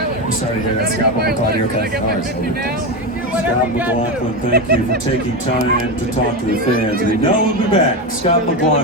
I'm sorry to hear that, Scott, but we're glad you're okay. Scott McLaughlin, thank you for taking time to talk to the fans. We know we'll be back. Scott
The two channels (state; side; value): normal; both; correlation 0.15